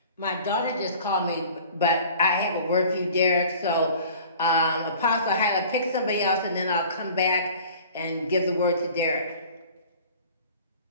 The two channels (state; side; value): inverted; both; correlation -0.46